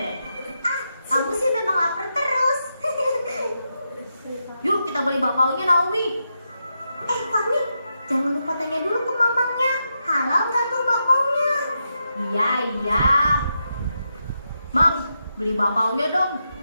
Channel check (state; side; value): inverted; both; correlation -0.85